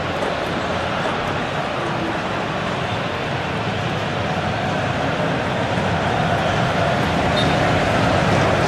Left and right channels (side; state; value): both; identical; correlation 1.00